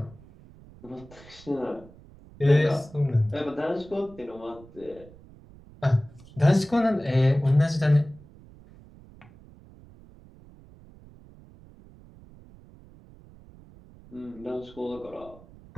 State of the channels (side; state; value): right; noise; rumble, 22 dB below the sound